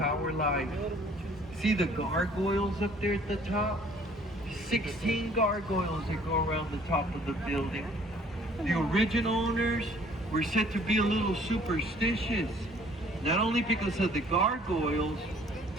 Life. See the gargoyles up there at the top? 16 gargoyles that go around the top of the building. The original owners were said to be a little superstitious. Not only because of the gargoyles,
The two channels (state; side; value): normal; both; correlation 0.56